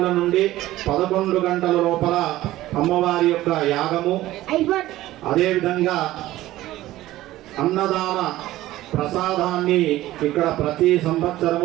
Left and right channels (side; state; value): left; quieter; 15.7 dB